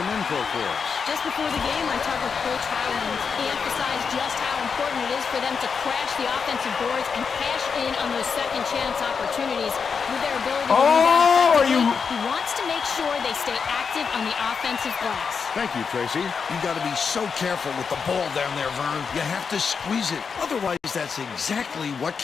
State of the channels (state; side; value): quieter; right; 5.8 dB